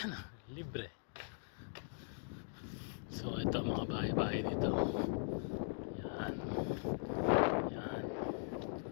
na, libre. So ito ang mga bahay-bahay dito. Yan, yan,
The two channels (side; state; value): right; silent; digital silence